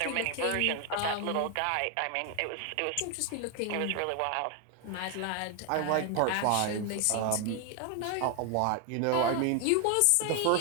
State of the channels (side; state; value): both; different; correlation 0.00